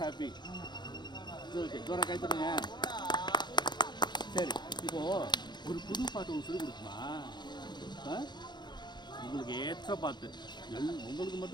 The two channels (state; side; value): late; right; 0.21 ms